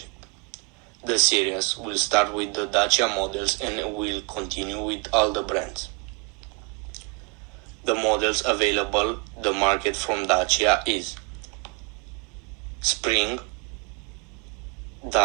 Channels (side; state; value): left; quieter; 26.7 dB